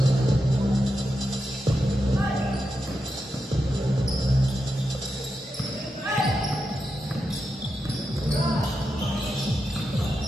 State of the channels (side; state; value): both; normal; correlation 0.87